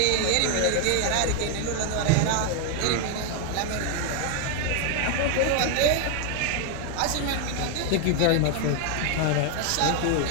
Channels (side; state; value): both; different; correlation 0.00